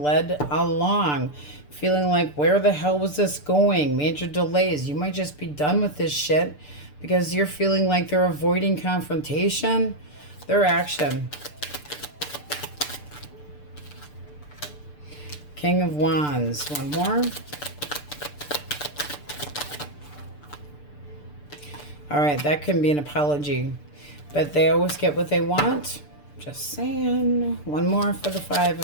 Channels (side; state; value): right; late; 6.8 ms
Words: led along. Feeling like, where the hell was this going? Major delays. You might just be done with this shit because you're feeling like they're avoiding confrontation. Their action. King of Wands. One more. All right, that can be an apology, but they always get what they want. Just saying. One more for the Five